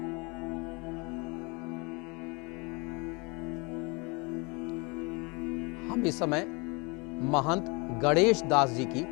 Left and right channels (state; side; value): quieter; right; 29.5 dB